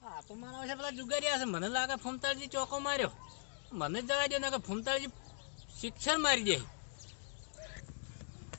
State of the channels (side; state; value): right; silent; digital silence